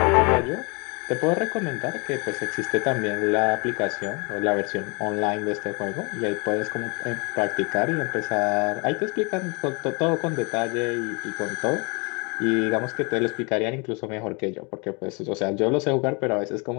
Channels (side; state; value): right; quieter; 32.0 dB